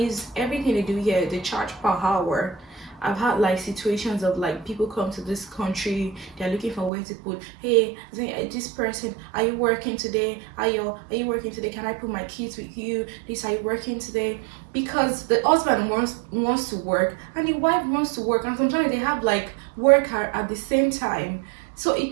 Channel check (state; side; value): drops out; left; at 6.9 s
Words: everything they do here, they charge per hour. I've had like situations of like people come to this country, they're looking for where to put, hey, this person, are you working today? Are you working today? Can I put my kids with you? This, are you working today? Because the husband wants to work and the wife wants to work, and sometimes they have like work at the same time. So it